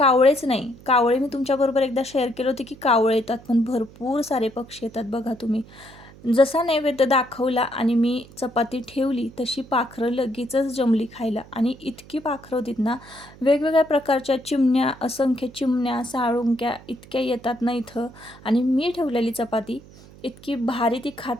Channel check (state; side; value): noise; right; hum, 21 dB below the sound